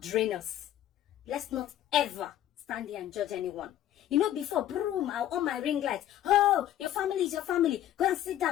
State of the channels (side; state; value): right; quieter; 12.3 dB